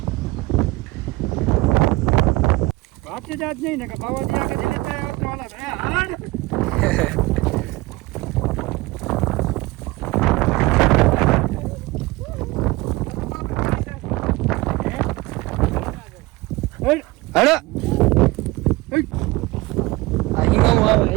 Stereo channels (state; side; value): quieter; left; 21.0 dB